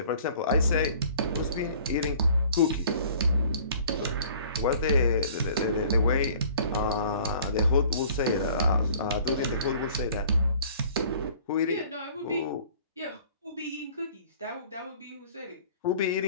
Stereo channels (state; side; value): inverted; both; correlation -0.51